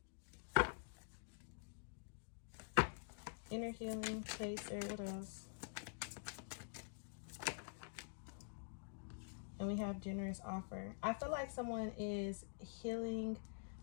Inner healing, chaser. What else? And we have generous offer. I feel like someone is healing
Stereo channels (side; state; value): right; silent; digital silence